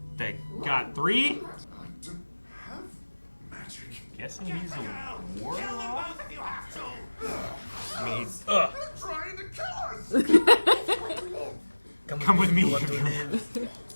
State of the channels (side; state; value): both; inverted; correlation -1.00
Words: They got 3? I don't have magic. Guessing he's a warlock? Kill them both if you have to! I mean, he's... They're trying to kill us! Come with me.